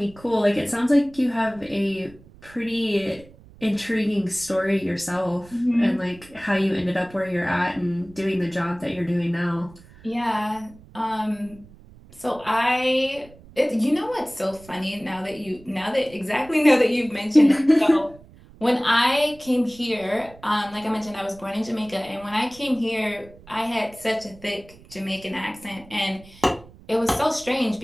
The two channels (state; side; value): noise; right; rumble, 23 dB below the sound